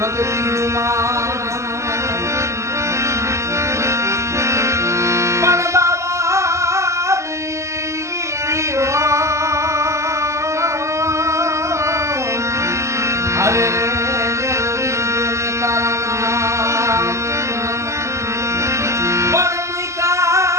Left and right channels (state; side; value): late; left; 0.14 ms